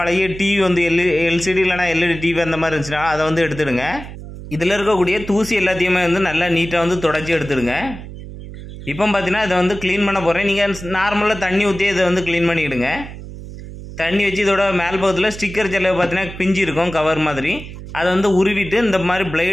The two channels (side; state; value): right; noise; hum, 12 dB below the sound